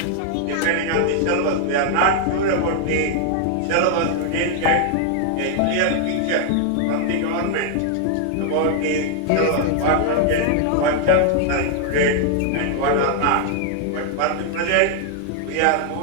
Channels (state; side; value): different; both; correlation 0.00